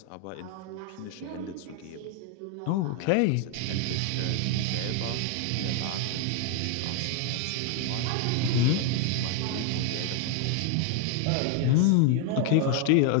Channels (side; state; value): both; different; correlation 0.00